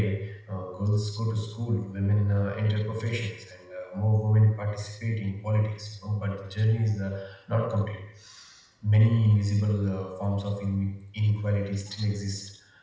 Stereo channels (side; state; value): both; identical; correlation 1.00